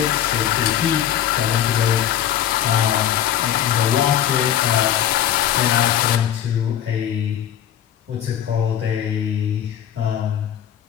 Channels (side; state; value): right; quieter; 10.6 dB